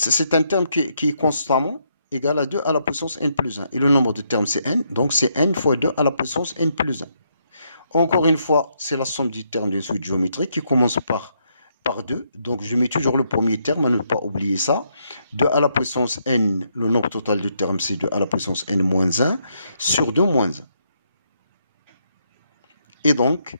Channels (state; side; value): inverted; both; correlation -0.76